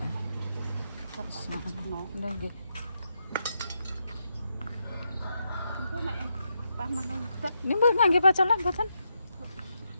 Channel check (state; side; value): inverted; both; correlation -0.83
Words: Terus no. Ndang nggih. Itu nek pas mangan udak Ini mbok ngangge pacolan boten?